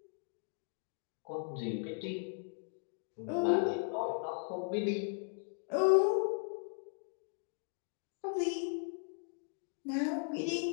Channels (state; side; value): silent; right; 53 dB below the other